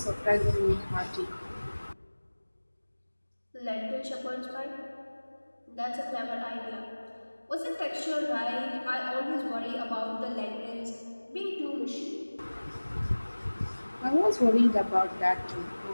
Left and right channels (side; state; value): both; inverted; correlation -1.00